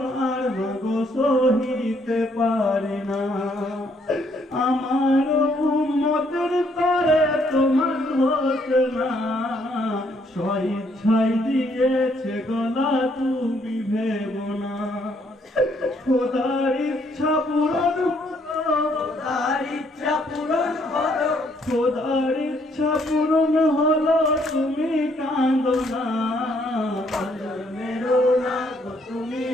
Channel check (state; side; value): normal; both; correlation 0.69